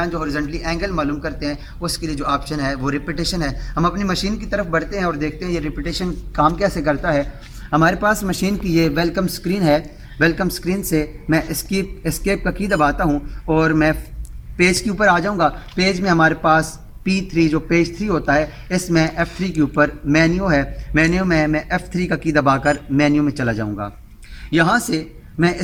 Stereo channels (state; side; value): identical; both; correlation 1.00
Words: जो हॉरिजॉन्टली एंगल मालूम करते हैं उसके लिए जो ऑप्शन है वो रिपीटेशन है। हम अपनी मशीन की तरफ बढ़ते हैं और देखते हैं ये रिपीटेशन काम कैसे करता है। हमारे पास मशीन की ये वेलकम स्क्रीन है। वेलकम स्क्रीन से मैं एस्केप का की दबाता हूँ और मैं पेज के ऊपर आ जाऊँगा। पेज में हमारे पास P3 जो पेज 3 होता है, इसमें F3 के ऊपर मेन्यू है। मेन्यू में मैं F3 का की दबाकर मेन्यू में चला जाऊँगा। यहाँ से